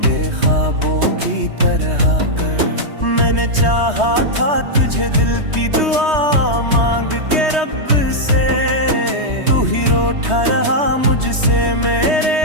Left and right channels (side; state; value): left; late; 3.2 ms